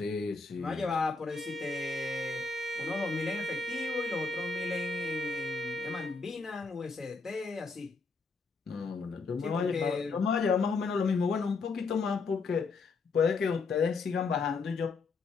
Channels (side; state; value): right; quieter; 4.2 dB